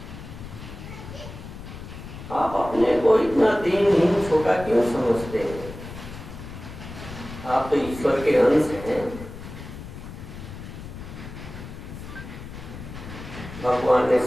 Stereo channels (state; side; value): noise; left; rumble, 12 dB below the sound